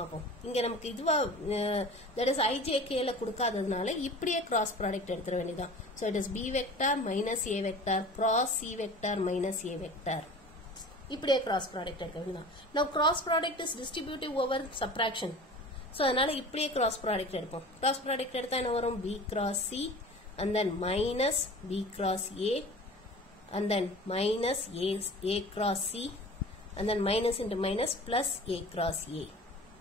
இங்க நமக்கு இதுவா that is IJK ல கொடுக்காததுனால இப்படியே cross product எடுத்துற வேண்டியதான். So it is B vector minus A vector cross C vector minus A vector. இப்படியே cross product எடுக்க வேண்டியதான். Now cross product is distributive over subtraction. So அதனால இப்படியே cross product எடுப்போம். Cross product எடுத்தா என்ன வரும்? B cross C and then minus B cross A and then minus A cross C and then minus into minus plus A cross A.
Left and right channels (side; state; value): both; normal; correlation 0.40